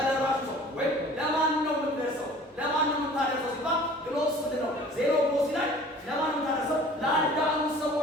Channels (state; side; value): normal; both; correlation 0.47